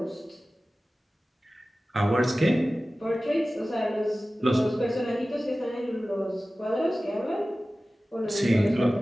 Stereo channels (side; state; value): both; normal; correlation 0.96